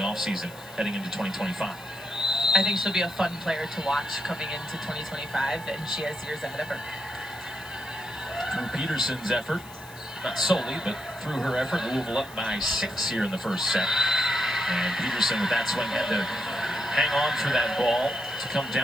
offseason heading into 2025. I think she'll be a fun player to watch coming into 2025, and she has years ahead of her. Through Peterson's effort, not solely, but through her effort, Louisville up by 6 here in the first set. And Peterson with that swing had to hang on for that ball to come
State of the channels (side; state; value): left; noise; hiss, 20 dB below the sound